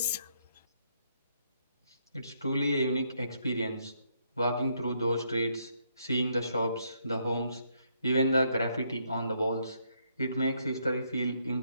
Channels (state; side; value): inverted; both; correlation -0.74